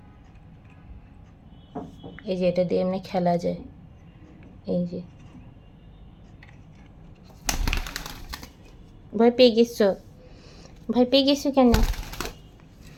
এই যে এটা দিয়ে এমনি খেলা যায়। এই যে ভয় পেয়ে গেছো? ভয় পেয়ে গেছো কেন?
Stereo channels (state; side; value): identical; both; correlation 1.00